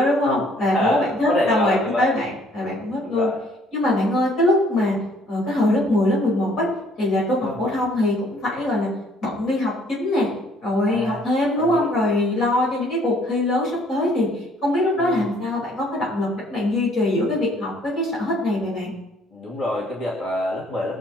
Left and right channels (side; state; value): both; normal; correlation 0.61